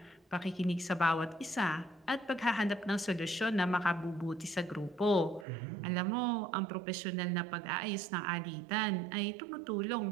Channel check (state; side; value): drops out; left; at 5.5 s